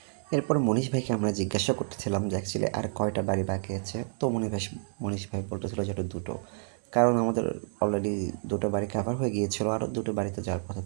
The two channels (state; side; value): silent; left; 58 dB below the other